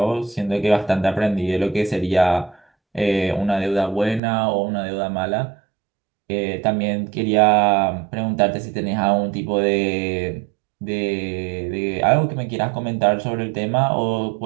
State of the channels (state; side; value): drops out; left; at 4.2 s